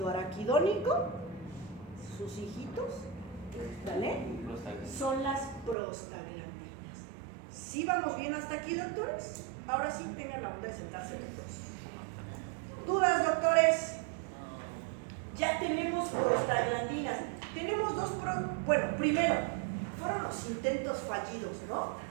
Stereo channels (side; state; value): left; drops out; at 5.8 s